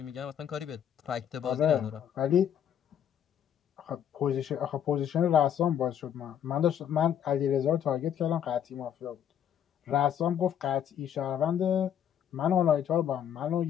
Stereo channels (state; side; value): quieter; right; 9.4 dB